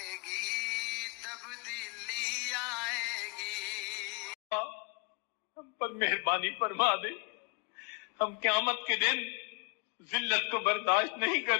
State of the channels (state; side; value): quieter; right; 30.5 dB